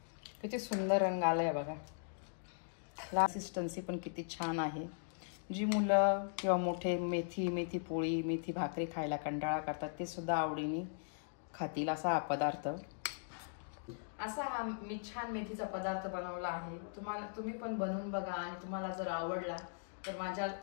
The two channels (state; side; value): silent; right; digital silence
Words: किती सुंदर रंग आलाय बघा। कन्सिस्टन्सी पण किती छान आहे। जी मुलं किंवा मोठे मेथी पोळी, मेथी भाकरी खायला कंटाळा करतात, ते सुद्धा आवडीने खातील असा हा पदार्थ। असा हा मी छान मेथीचा पदार्थ बनवला आहे। तुम्ही पण बनवून बघा, आणि तुम्हाला जर आवडला तर माझ्या